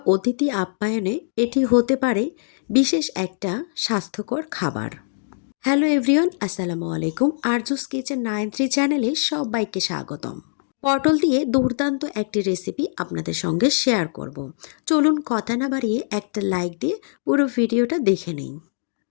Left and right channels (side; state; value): right; silent; digital silence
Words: অতিথি আপ্যায়নে এটি হতে পারে বিশেষ একটা স্বাস্থ্যকর খাবার। হ্যালো এভরিওয়ান, আসসালামু আলাইকুম। আরজুস কিচেন 93 চ্যানেলে সবাইকে স্বাগতম। পটল দিয়ে দুর্দান্ত একটি রেসিপি আপনাদের সঙ্গে শেয়ার করব। চলুন কথা না বাড়িয়ে একটা লাইক দিয়ে পুরো ভিডিওটা দেখে নিন।